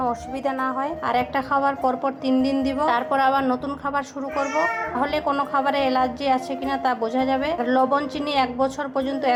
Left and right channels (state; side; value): identical; both; correlation 1.00